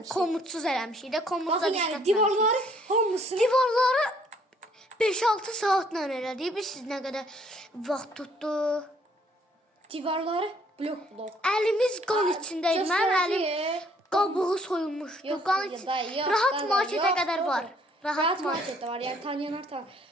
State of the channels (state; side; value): normal; both; correlation 0.63